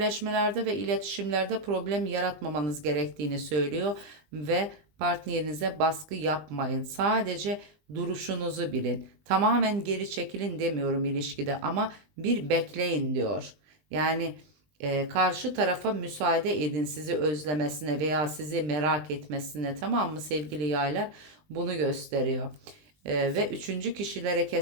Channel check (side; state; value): left; late; 20 ms